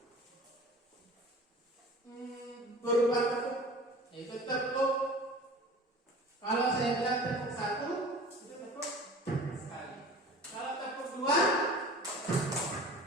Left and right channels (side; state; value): both; normal; correlation 0.41